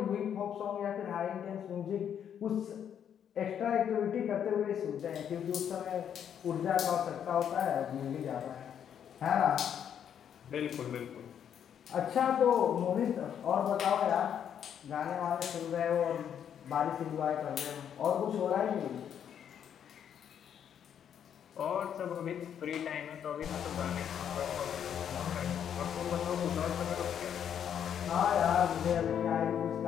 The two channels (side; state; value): right; quieter; 8.9 dB